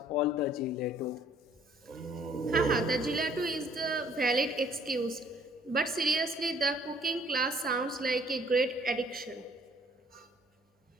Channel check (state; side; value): normal; both; correlation 0.60